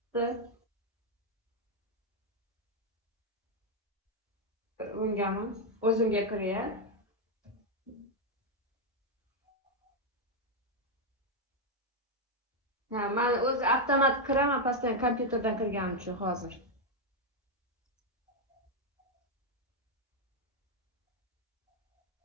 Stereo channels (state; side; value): normal; both; correlation 0.01